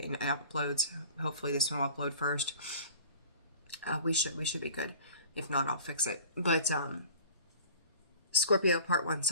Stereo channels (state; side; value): inverted; both; correlation -0.43